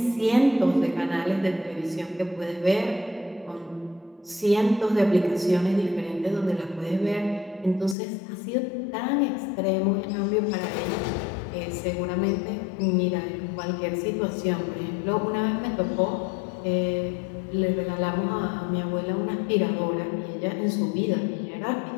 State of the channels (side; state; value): right; drops out; at 8.0 s